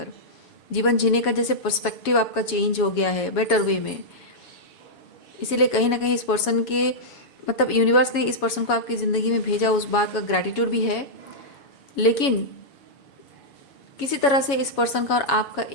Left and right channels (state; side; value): late; right; 7.2 ms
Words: जीवन जीने का जैसे पर्सपेक्टिव आपका चेंज हो गया है बेटर वे में। इसीलिए कहीं ना कहीं इस पर्सन के, मतलब यूनिवर्स ने इस पर्सन को आपकी ज़िंदगी में भेजा, उस बात का ग्रैटिट्यूड भी है, लेकिन किसी तरह से इस पर्सन का और आपका